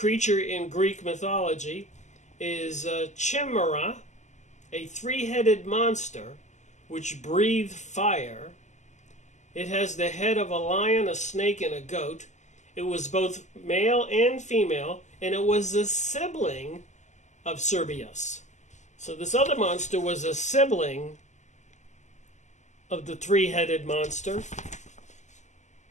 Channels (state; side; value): late; right; 0.34 ms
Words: in Greek mythology is Chimera, a 3-headed monster which breathes fire. It has the head of a lion, a snake, and a goat. It was both male and female, and it was a sibling of Cerberus. So this other monster was a sibling of the 3-headed monster.